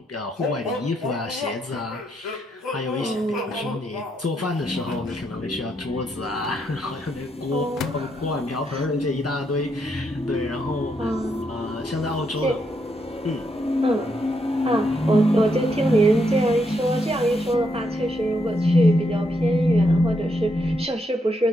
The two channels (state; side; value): normal; both; correlation 0.78